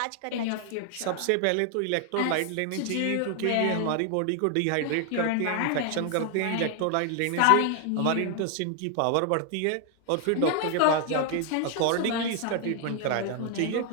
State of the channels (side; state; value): both; different; correlation 0.00